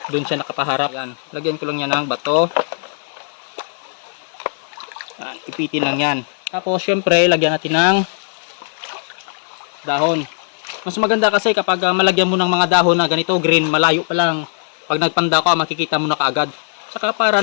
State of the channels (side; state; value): right; silent; 67 dB below the other